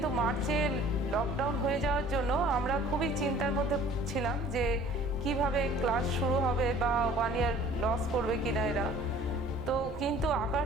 মার্চে লকডাউন হয়ে যাওয়ার জন্য আমরা খুবই চিন্তার মধ্যে ছিলাম যে কিভাবে ক্লাস শুরু হবে বা 1 ইয়ার লস করবে কিনা এরা। তো কিন্তু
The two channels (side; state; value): both; normal; correlation 0.50